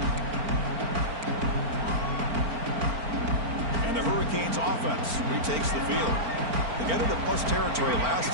And the Hurricanes offense retakes the field. They got into plus territory last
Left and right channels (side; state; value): left; late; 4.4 ms